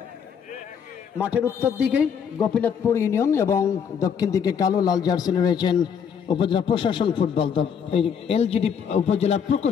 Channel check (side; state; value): right; quieter; 7.3 dB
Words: মাঠের উত্তর দিকে গোপীনাথপুর ইউনিয়ন এবং দক্ষিণ দিকে কালো লাল জার্সি রয়েছেন উপজেলা প্রশাসন ফুটবল দল, এলজিডি উপজেলার